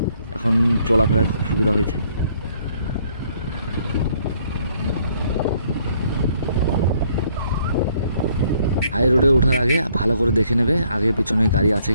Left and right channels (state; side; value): inverted; both; correlation -0.66